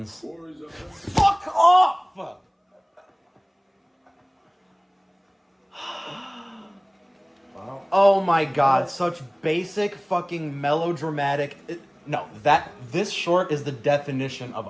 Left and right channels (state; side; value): identical; both; correlation 1.00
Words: Fuck off! Wow. Oh my god, such basic fucking melodramatic. This short is the definition